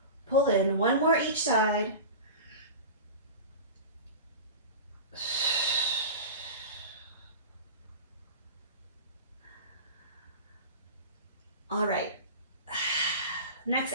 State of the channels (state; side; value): inverted; both; correlation -0.31